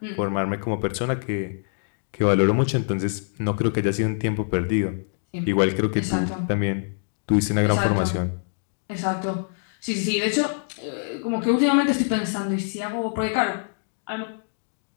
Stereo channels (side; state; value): right; silent; digital silence